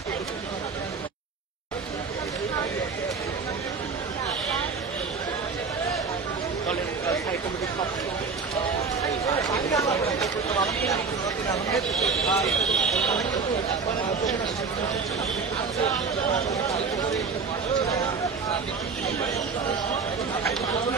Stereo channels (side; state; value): left; quieter; 5.0 dB